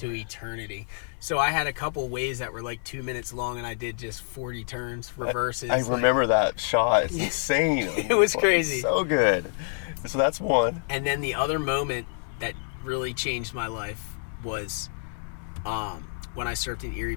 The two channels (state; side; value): silent; right; digital silence